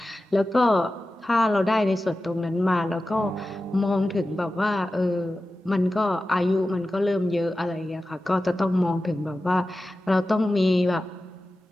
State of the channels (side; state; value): both; normal; correlation 0.94